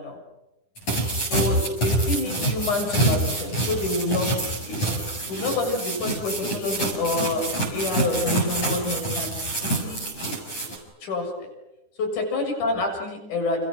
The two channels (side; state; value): right; late; 9.9 ms